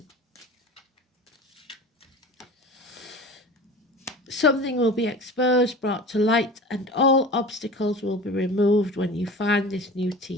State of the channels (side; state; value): both; normal; correlation 0.37